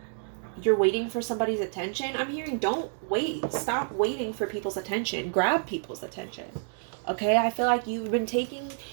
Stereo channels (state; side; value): silent; left; 59 dB below the other